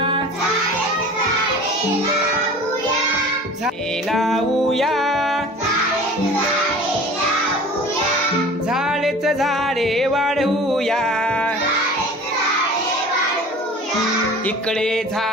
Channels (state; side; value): normal; both; correlation 0.42